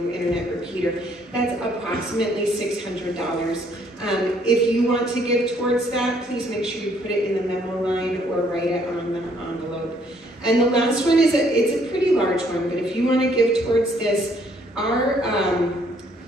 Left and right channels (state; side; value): normal; both; correlation 0.66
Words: internet repeater. That's approximately $600. If you want to give towards that, please make sure you put it in the memo line or write it on the envelope. And the last one is it's a pretty large one, but if you want to give towards this, our